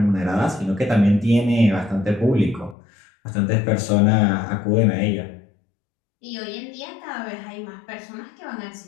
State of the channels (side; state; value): right; drops out; at 2.8 s